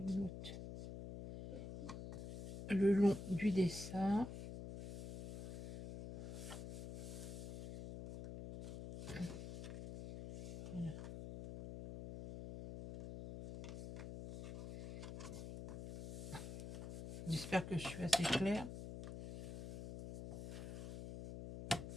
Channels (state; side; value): noise; left; hum, 8 dB below the sound